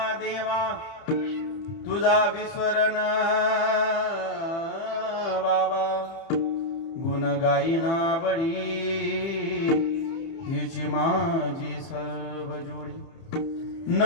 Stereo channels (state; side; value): late; right; 30 ms